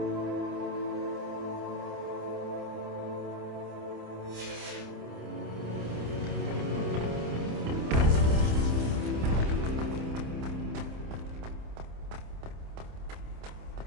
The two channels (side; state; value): left; late; 27 ms